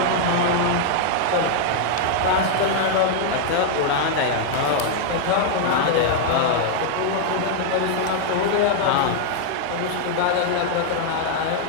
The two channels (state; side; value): different; both; correlation 0.00